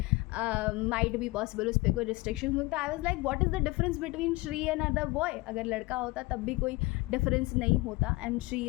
माइट बी पॉसिबल उस पर कोई रिस्ट्रिक्शन होता है, I was like what is the difference between Shri and other boy. अगर लड़का होता तब भी कोई डिफरेंस नहीं होता and Shri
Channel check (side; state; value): right; quieter; 22.7 dB